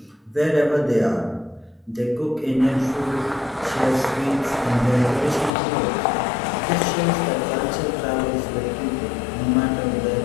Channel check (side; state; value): right; drops out; at 5.5 s